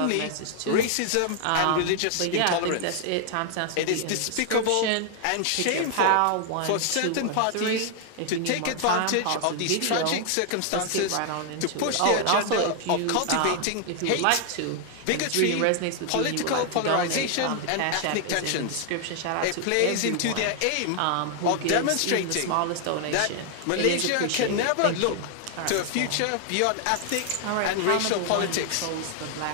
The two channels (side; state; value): both; different; correlation 0.00